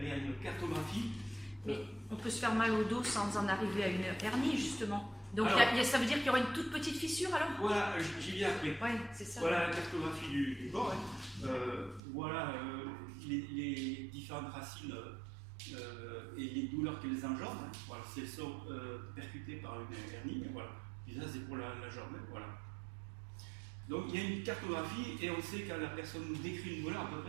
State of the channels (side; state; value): left; drops out; at 12.0 s